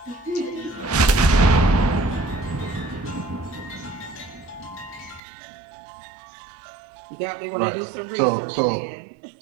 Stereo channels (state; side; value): drops out; left; at 5.2 s